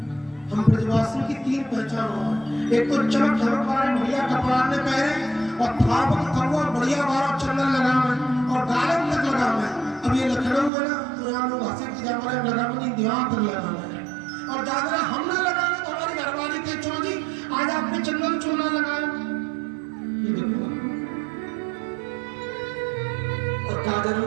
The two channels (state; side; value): drops out; left; at 10.7 s